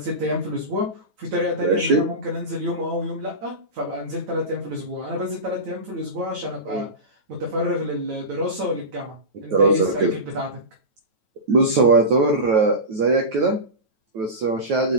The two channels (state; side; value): late; left; 9.1 ms